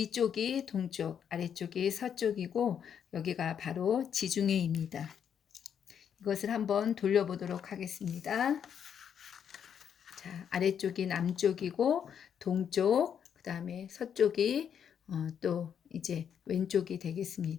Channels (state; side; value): quieter; right; 8.2 dB